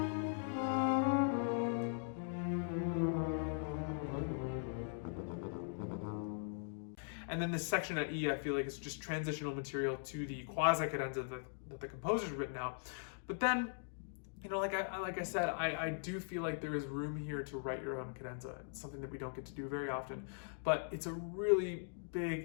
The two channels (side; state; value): right; silent; digital silence